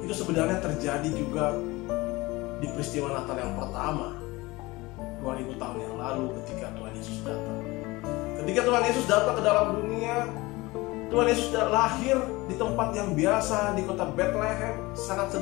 itu sebenarnya terjadi juga di peristiwa Natal yang pertama 2000 tahun yang lalu ketika Tuhan Yesus datang. Ketika Tuhan Yesus datang ke dalam dunia, Tuhan Yesus lahir di tempat yang biasa di kota Bethlehem, sangat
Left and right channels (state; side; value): quieter; right; 21.7 dB